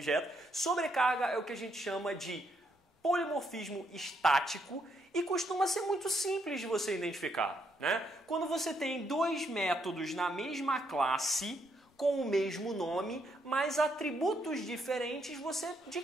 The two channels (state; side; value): normal; both; correlation 0.75